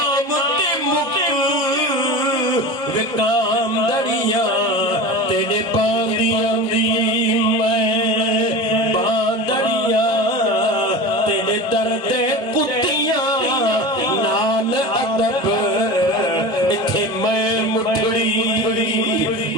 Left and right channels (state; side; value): normal; both; correlation 0.31